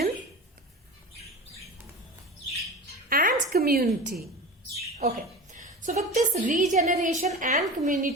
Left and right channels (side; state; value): both; normal; correlation 0.31